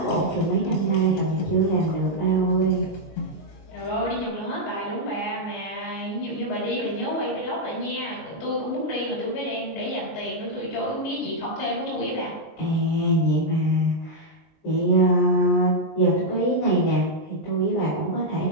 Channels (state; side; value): late; right; 19 ms